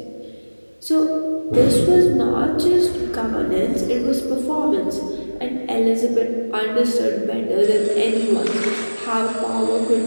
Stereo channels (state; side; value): inverted; both; correlation -1.00